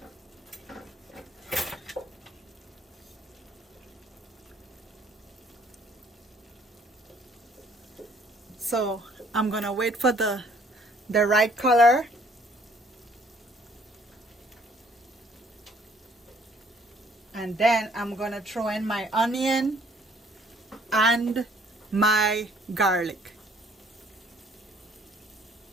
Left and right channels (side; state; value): both; normal; correlation 0.61